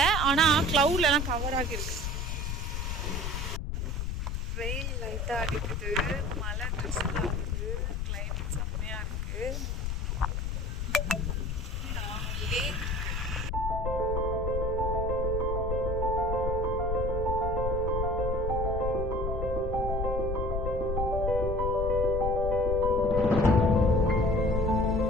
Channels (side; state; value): left; noise; rumble, 1 dB below the sound